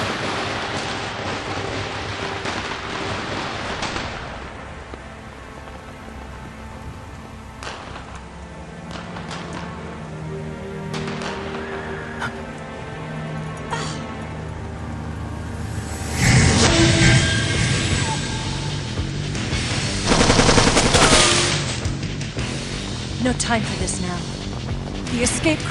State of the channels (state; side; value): identical; both; correlation 1.00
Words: have time for this now. The escape